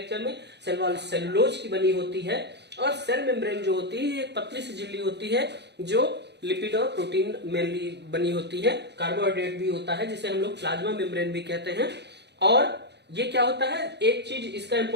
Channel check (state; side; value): late; left; 0.50 ms